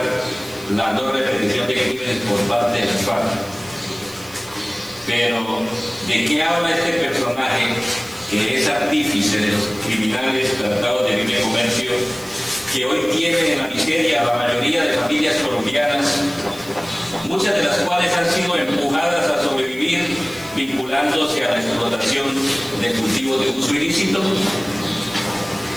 la no repetición de crímenes por parte de las FARC. Pero, ¿de qué habla este personaje que es artífice de los criminales tratados de libre comercio que hoy tienen en la miseria a la mayoría de familias colombianas, muchas de las cuales han sido empujadas a sobrevivir vinculándose a la explotación de cultivos de uso ilícito?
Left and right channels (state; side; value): noise; right; hiss, 20 dB below the sound